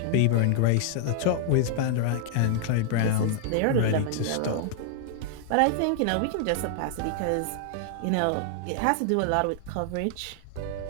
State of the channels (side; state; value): both; different; correlation -0.01